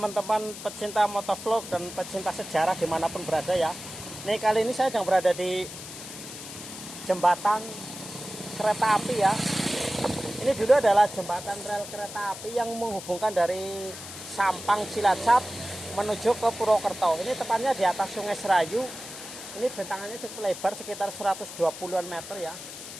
pecinta motovlog dan pecinta sejarah dimanapun berada ya. Nih kali ini saya sedang berada di jembatan kereta api ya. Ini dulu adalah jembatan rel kereta api yang menghubungkan dari Sampang Cilacap menuju ke Purwokerto. Ini tepatnya di atas Sungai Serayu. Ini bentangannya cukup lebar sekitar 120-an meter ya.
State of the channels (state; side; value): noise; left; hiss, 12 dB below the sound